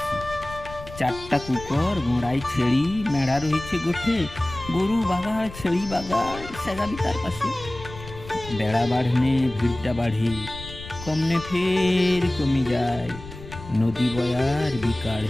চারটা কুকর গোড়ায় ছেড়ি, মেড়া রয়েছে গোঠে, গরু বাগার ছেড়ি বাগার সেগাবি তার পাশে। বেড়া বাড়নে ভিড়টা বাড়ে, কমনে ফের কমে যায়, নদী বয়ার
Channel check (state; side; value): noise; left; rumble, 14 dB below the sound